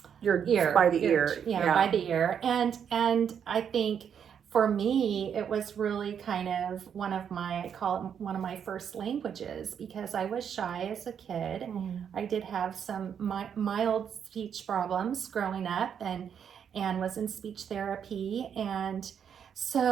by the ear. Yeah, by the ear. And I think for me, it was really kind of I call it one of my first languages, because I was shy as a kid. I did have some mild speech problems growing up and was in speech therapy. And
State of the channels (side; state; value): left; quieter; 8.0 dB